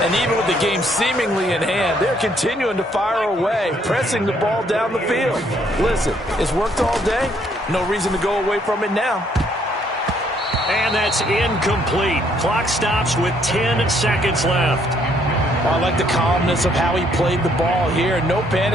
And even with the game seemingly in hand, they're continuing to fire away, pressing the ball down the field. Listen, it's worked all day. No reason to go away from it now. And that's incomplete. Clock stops with 10 seconds left. I like the calmness of how he played the ball here. No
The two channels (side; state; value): both; normal; correlation 0.68